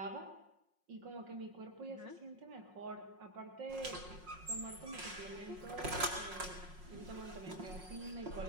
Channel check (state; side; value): late; left; 5.5 ms